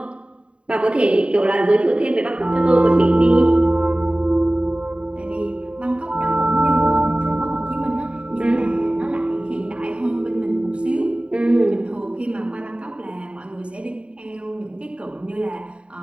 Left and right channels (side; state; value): left; late; 0.057 ms